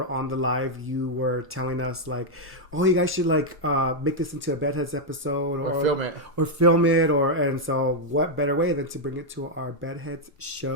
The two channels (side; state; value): both; normal; correlation -0.01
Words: on the live, you were telling us like, oh, you guys should make this into a Bedheads episode or film it. And so what better way than to bring it to our Bedheads